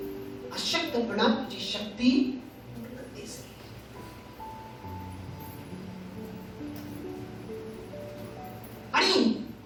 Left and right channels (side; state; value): both; identical; correlation 1.00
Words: अशक्तपणा तुझी शक्ती आणि